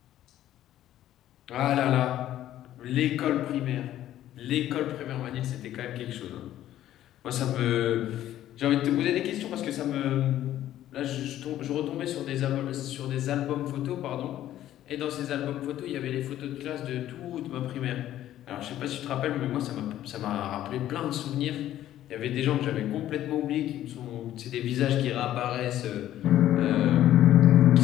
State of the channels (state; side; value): quieter; right; 12.7 dB